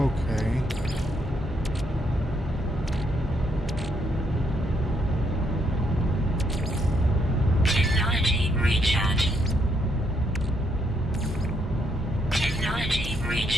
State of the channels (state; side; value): normal; both; correlation 0.75